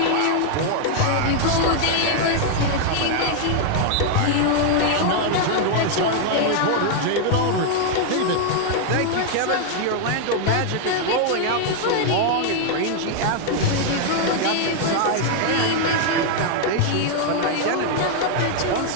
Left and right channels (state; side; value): different; both; correlation 0.00